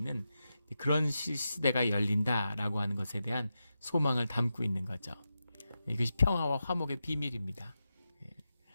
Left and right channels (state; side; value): inverted; both; correlation -0.90